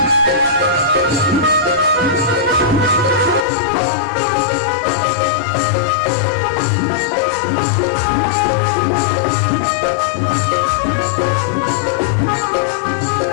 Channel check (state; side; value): drops out; right; at 3.5 s